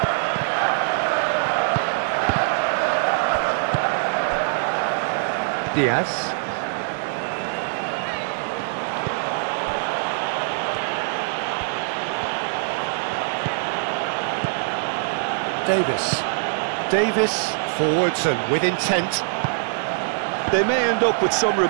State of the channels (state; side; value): silent; left; digital silence